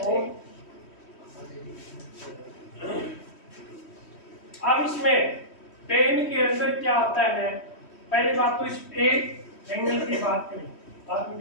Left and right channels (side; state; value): right; late; 3.1 ms